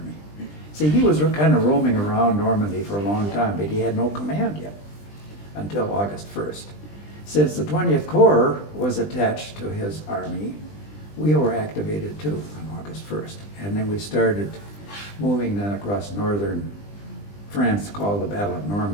See, he was kind of roaming around Normandy for a long time, but he had no command yet until August 1st. Since the 20th Corps was attached to his army, we were activated too on August 1st. And then we started moving then across northern France, called the Battle of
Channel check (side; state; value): right; late; 20 ms